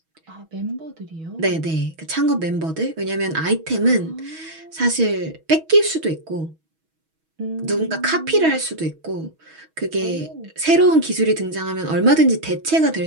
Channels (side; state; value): left; late; 6.2 ms